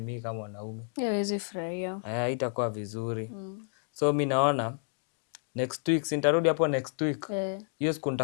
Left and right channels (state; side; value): silent; right; 58 dB below the other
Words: mimi kama mwanaume? Hawezi furahia. Itakuwa vizuri. So mimi naona next week nitarudi hapo next week. Hiyo siku